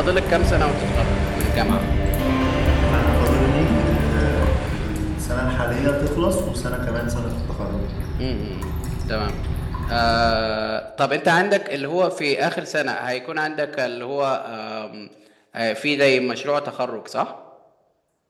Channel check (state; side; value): identical; both; correlation 1.00